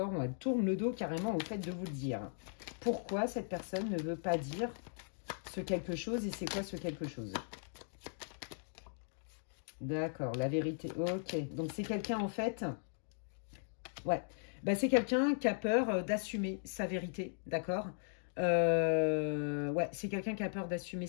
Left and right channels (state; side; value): silent; right; digital silence